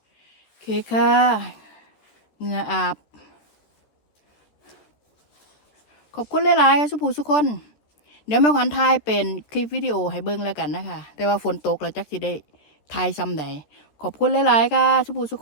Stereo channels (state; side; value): late; right; 14 ms